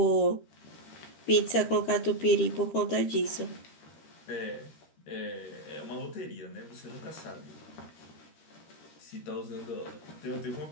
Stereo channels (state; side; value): late; right; 13 ms